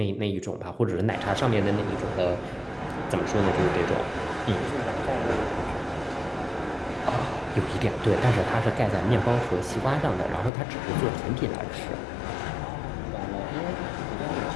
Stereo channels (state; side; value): drops out; right; at 10.5 s